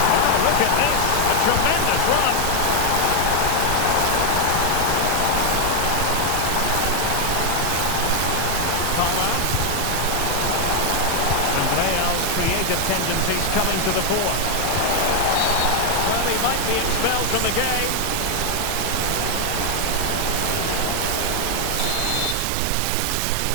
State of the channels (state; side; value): different; both; correlation 0.00